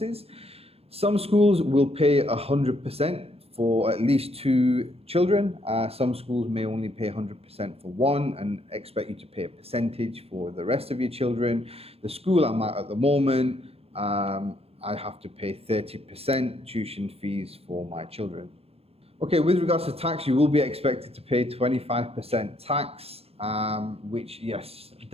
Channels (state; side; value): late; left; 0.29 ms